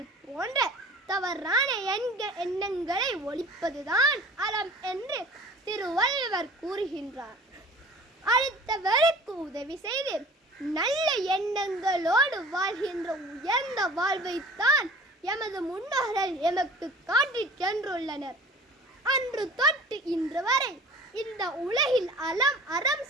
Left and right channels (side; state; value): both; normal; correlation 0.43